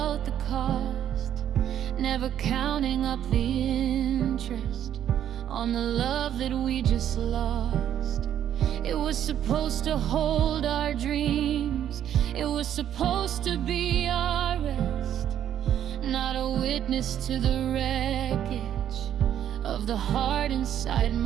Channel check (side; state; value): left; quieter; 10.4 dB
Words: the cost, never counting up the interest on the love that we just lost. It was supposed to hold our dreams, it was supposed to be our rest, not a witness to the wreckage of the heart inside